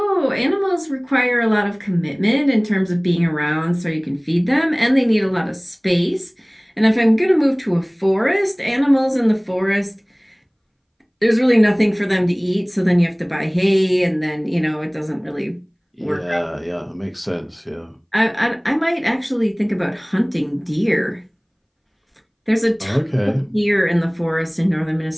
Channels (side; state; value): both; identical; correlation 1.00